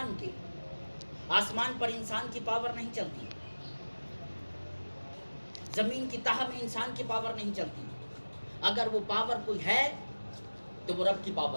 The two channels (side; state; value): both; inverted; correlation -1.00